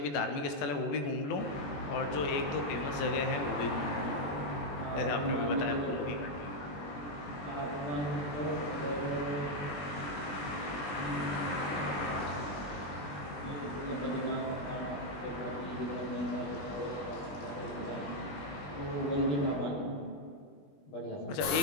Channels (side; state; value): right; late; 21 ms